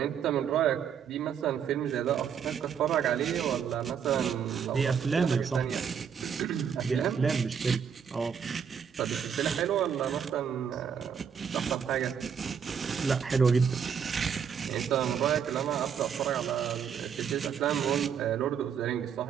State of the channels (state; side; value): quieter; left; 7.4 dB